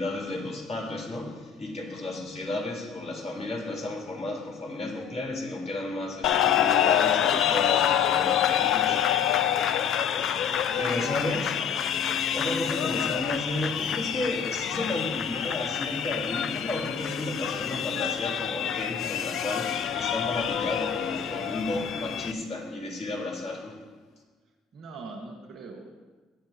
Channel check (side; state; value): right; quieter; 6.7 dB